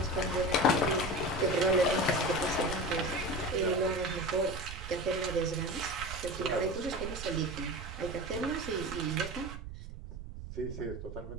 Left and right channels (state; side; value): noise; right; rumble, 10 dB below the sound